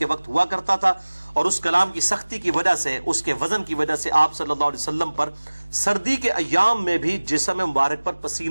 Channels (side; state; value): both; inverted; correlation -1.00